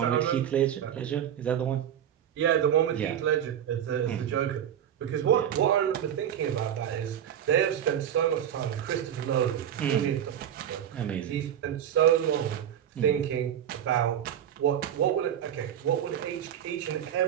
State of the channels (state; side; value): quieter; left; 9.8 dB